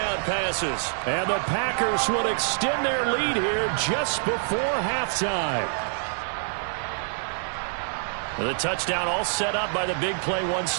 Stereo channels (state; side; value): silent; left; digital silence